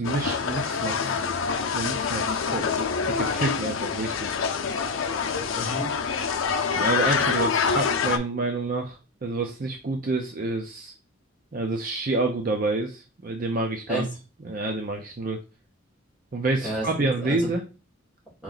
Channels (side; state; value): both; normal; correlation 0.17